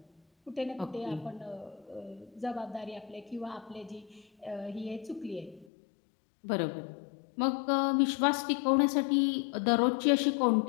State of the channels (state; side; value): drops out; right; at 5.7 s